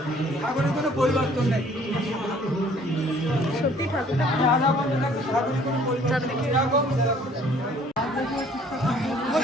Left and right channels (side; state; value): both; normal; correlation 0.57